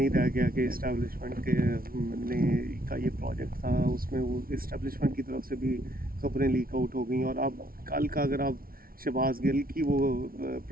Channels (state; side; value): late; left; 0.43 ms